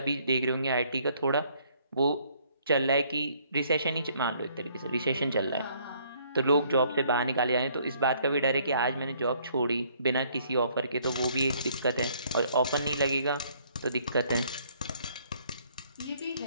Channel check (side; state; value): both; inverted; correlation -0.64